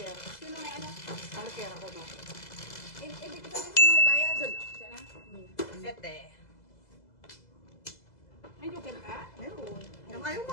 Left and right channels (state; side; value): late; right; 2.0 ms